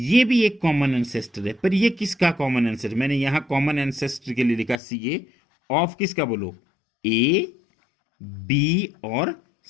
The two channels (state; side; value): drops out; right; at 4.8 s